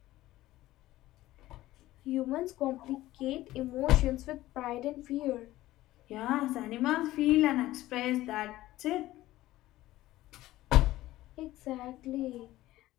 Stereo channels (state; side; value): quieter; right; 16.1 dB